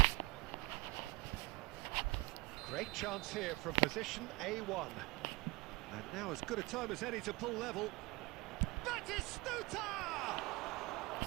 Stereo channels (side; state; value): left; quieter; 23.1 dB